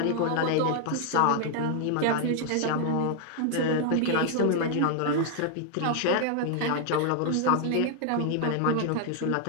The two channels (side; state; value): both; different; correlation 0.00